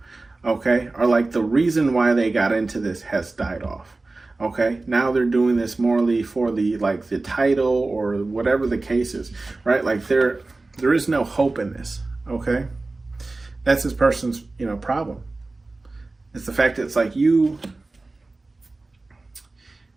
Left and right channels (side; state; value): left; quieter; 3.3 dB